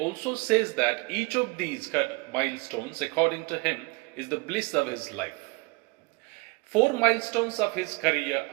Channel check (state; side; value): quieter; left; 26.1 dB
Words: says that each of these milestones, according to him, is the bliss of his life. 4 milestones of his career